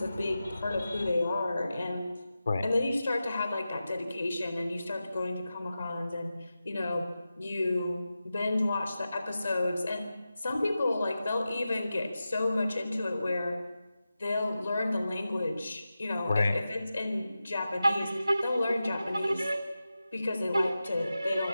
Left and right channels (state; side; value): inverted; both; correlation -0.93